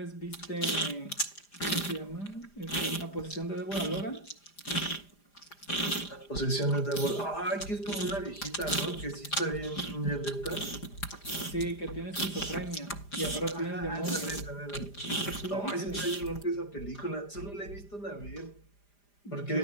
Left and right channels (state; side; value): late; right; 5.0 ms